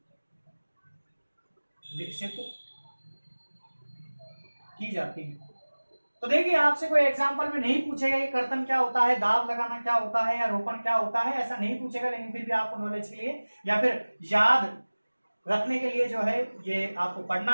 विकसित की जाती है। तो देखिए, आपसे कोई एग्जांपल में नहीं पूछेगा कि कर्तन क्या होता है, दाब लगाना क्या होता है, या रोपण क्या होता है, ऐसा नहीं पूछेगा, लेकिन फिर भी आपको नॉलेज के लिए या फिर याद रखने के लिए जो है ये आपको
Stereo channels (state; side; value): inverted; both; correlation -1.00